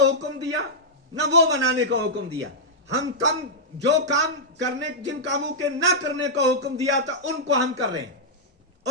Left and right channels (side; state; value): both; normal; correlation -0.09